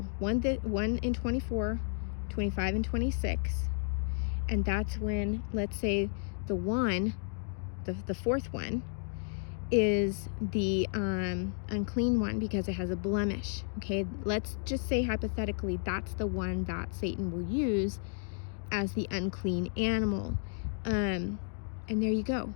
one in 24, 25, and 26. And that's when, let's say, the fourth one is the unclean one because it has a blemish. Okay, let's just say hypothetically that's the one that Satan will use as the unclean animal. And there you go.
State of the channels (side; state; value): right; silent; 56 dB below the other